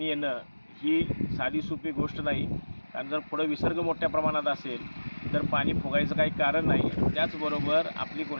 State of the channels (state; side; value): inverted; both; correlation -1.00